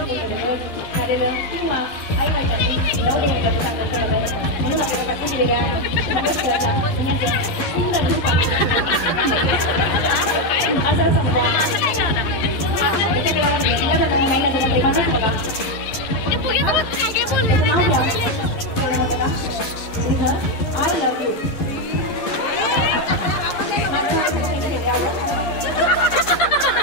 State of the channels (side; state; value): right; late; 11 ms